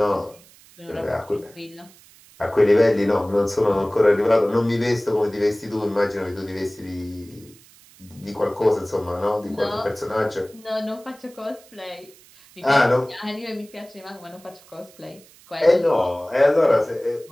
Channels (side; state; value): right; noise; hiss, 25 dB below the sound